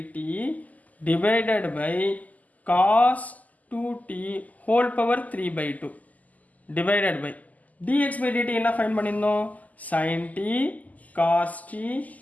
divided by cos 2t whole power 3/2 divided by dx by dt என்ன ஃபைன் பண்ணியிருந்தோம், sin t cos t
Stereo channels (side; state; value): right; late; 0.078 ms